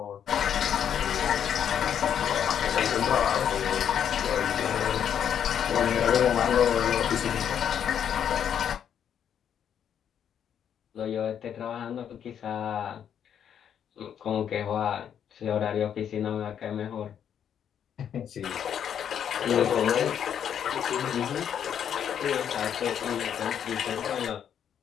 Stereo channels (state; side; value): quieter; right; 8.8 dB